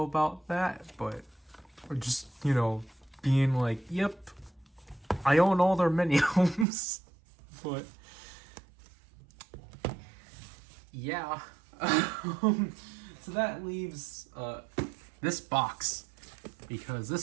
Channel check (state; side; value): drops out; left; at 6.7 s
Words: about that, but just, you know, being like, yep, I own all their mini homes. But yeah. So that leaves this box, because